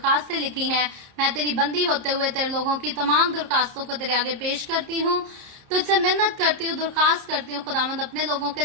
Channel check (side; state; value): left; late; 30 ms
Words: लिखी हैं, मैं तेरी बंदी होते हुए तेरे लोगों की तमाम दरखास्तों को तेरे आगे पेश करती हूँ, तुझसे मिन्नत करती हूँ, दरखास्त करती हूँ। खुदावंद अपने लोगों के